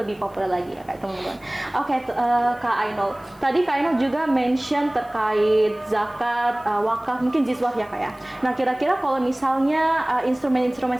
populer lagi ya Kak teman-teman. Oke, Kak Ainul. Tadi Kak Ainul juga mention terkait zakat, wakaf, mungkin jizwaf ya Kak ya. Nah kira-kira kalau misalnya instrumen-instrumen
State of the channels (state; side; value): noise; left; hiss, 29 dB below the sound